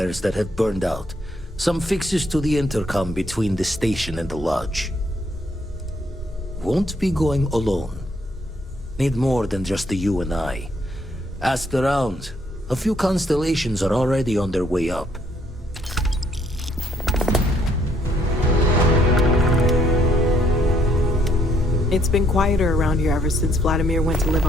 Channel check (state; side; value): normal; both; correlation 0.68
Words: that have burned out, some fixes to the intercom between the station and the lodge. Won't be going alone. Need more than just the you and I. Asked around. A few constellations are already on their way up. It's been quieter around here ever since Vladimir went to live